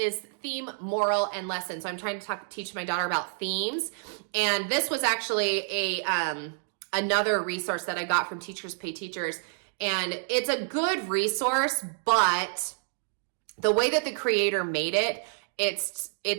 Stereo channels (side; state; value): left; silent; digital silence